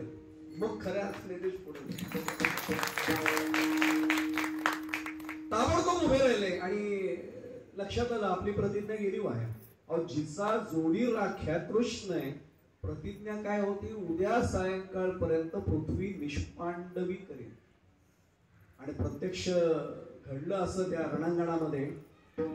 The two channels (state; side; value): identical; both; correlation 1.00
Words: मग खऱ्या असले देश पुढे ताबडतोब उभे राहिले. आणि लक्षात आलं, आपली प्रतिज्ञा गेली वाया. अहो जिचा जोडी राख्या कृष्ण आहे, प्रतिज्ञा काय होती? उद्या सायंकाळपर्यंत पृथ्वी निष्पांडवी करेल. आणि प्रत्यक्ष घडलं असं त्या रणांगणामध्ये.